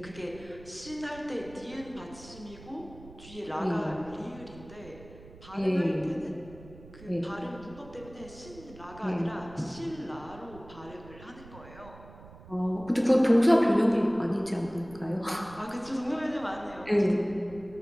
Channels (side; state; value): right; noise; rumble, 18 dB below the sound